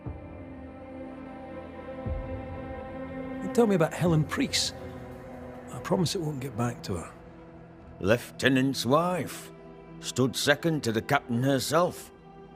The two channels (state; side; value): identical; both; correlation 1.00